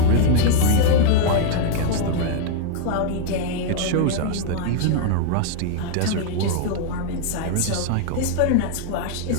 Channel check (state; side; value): different; both; correlation 0.00